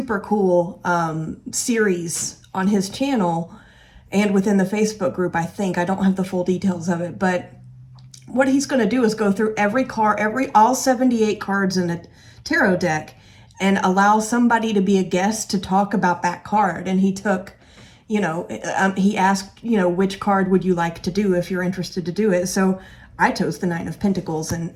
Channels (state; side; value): identical; both; correlation 1.00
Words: cool series on his channel and within the Facebook group, I think. I don't have the full details of it, but what he's going to do is go through all 78 cards in a tarot deck and allow somebody to be a guest to talk about that card. And he took, he asked, which card would you like to do if you're interested to do it? So I chose the 9 of Pentacles,